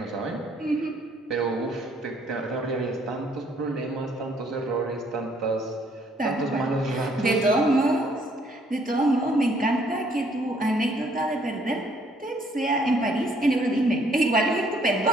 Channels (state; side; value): normal; both; correlation 0.65